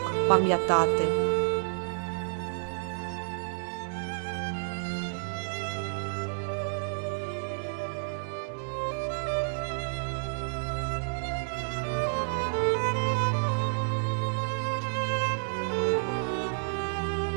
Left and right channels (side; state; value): left; silent; digital silence